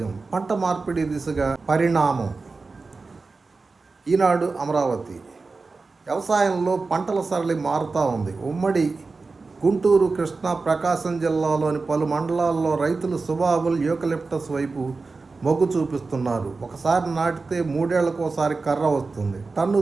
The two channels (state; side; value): quieter; left; 4.0 dB